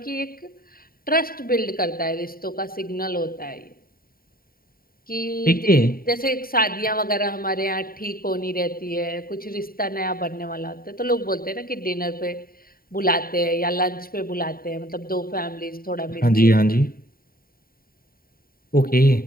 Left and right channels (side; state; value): right; late; 0.43 ms